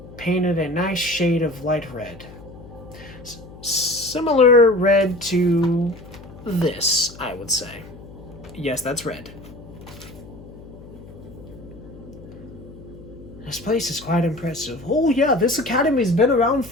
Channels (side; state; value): left; noise; hum, 17 dB below the sound